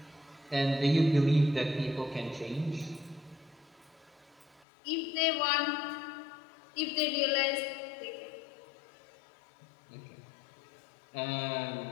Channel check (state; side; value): drops out; right; at 4.7 s